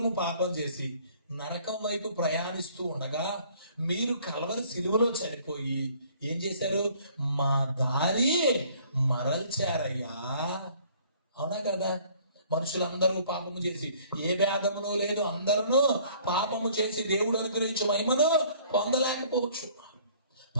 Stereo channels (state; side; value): inverted; both; correlation -0.57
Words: పాపం చేసి నరకం వైపు ప్రయాణిస్తూ ఉండగా మీరు కల్వరి సిలువలో చనిపోయి ఏం చేశారు? మా దారి మరల్చారయ్యా. అవునా కదా? మనుషులందరూ పాపము చేసి ఏ భేదమును లేదు, అందరూ పాపము చేసి దేవుడు అనుగ్రహించే మహిమను పొందలేకపోవచ్చు.